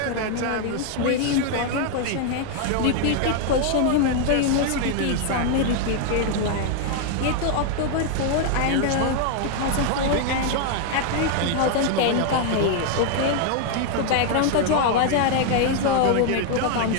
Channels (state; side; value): different; both; correlation 0.00